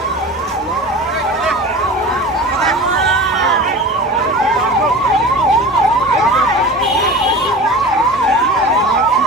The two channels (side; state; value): both; normal; correlation 0.35